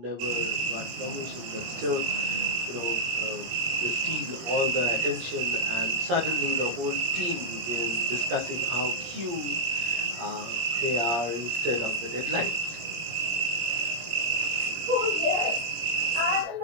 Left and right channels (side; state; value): left; late; 18 ms